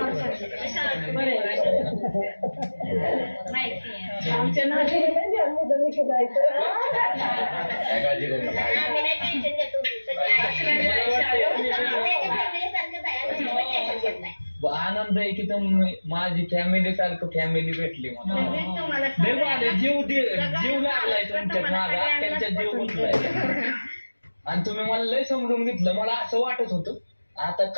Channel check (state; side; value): inverted; both; correlation -1.00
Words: आमच्या आनंद आहे की तुम्ही माझी फॅमिली सारखं फॅमिली भेटली मला जीव जीव लागलाय तुमच्या माझा त्यांच्या जीव गुंतलाय आणि तुम्ही मला लय समजून घेतलं. मला असं वाटत होतं आता